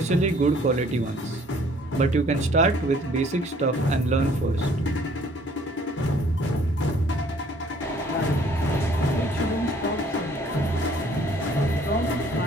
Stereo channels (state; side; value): normal; both; correlation 0.58